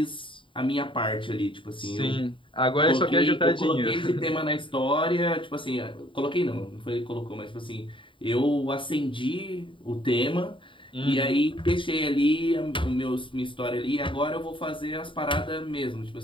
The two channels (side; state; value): right; late; 0.25 ms